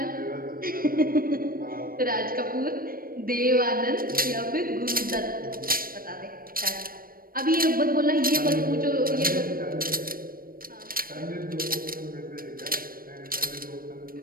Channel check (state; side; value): late; left; 0.42 ms